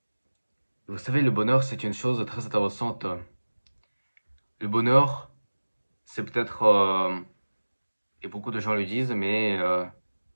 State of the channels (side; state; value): both; inverted; correlation -1.00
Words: Vous savez, le bonheur, c'est une chose très intéressante. Le bonheur, c'est peut-être, et beaucoup de gens le disent, mais